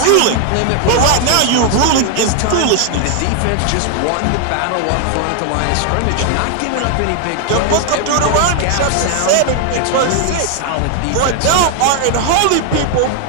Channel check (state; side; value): different; both; correlation 0.00